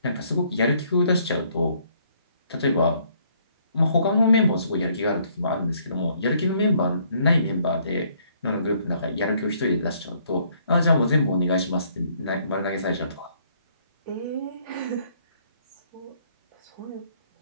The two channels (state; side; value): inverted; both; correlation -0.66